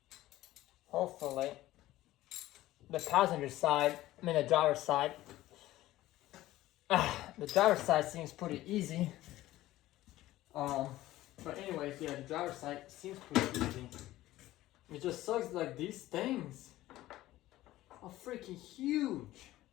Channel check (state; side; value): quieter; right; 15.8 dB